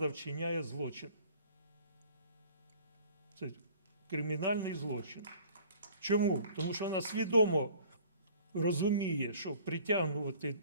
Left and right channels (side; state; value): both; inverted; correlation -0.51